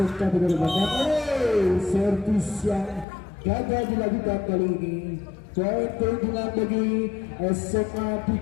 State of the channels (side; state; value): right; drops out; at 3.1 s